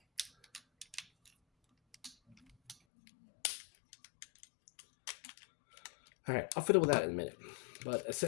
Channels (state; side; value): drops out; right; at 2.8 s